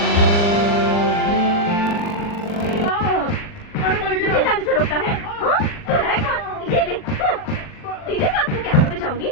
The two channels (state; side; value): late; right; 40 ms